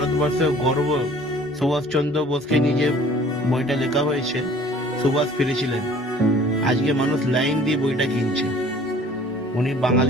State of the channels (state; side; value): normal; both; correlation 0.52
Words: গর্ব সুভাষচন্দ্র বোসকে নিজে বইটা লেখা হয়েছে, সুভাষ ফিরেছিলেন। আজকে মানুষ লাইন দিয়ে বইটা কিনছে। উনি